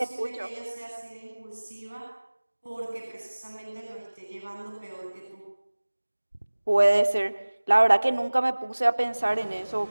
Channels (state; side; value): inverted; both; correlation -1.00